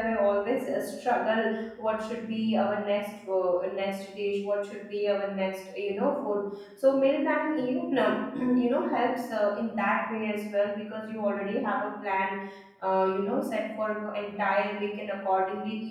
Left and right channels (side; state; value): both; identical; correlation 1.00